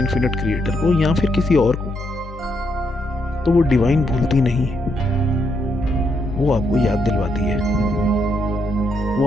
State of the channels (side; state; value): both; normal; correlation 0.78